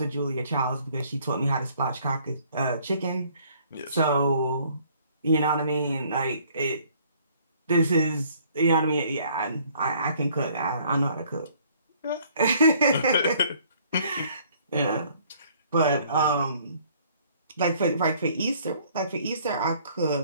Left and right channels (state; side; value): inverted; both; correlation -0.60